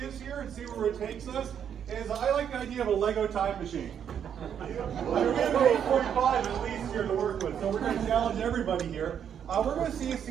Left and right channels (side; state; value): left; quieter; 8.5 dB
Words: here and see where it takes us. I like the idea of a Lego time machine. We have 8:45 at least here to work with, so we're going to challenge everybody here. We're going to see a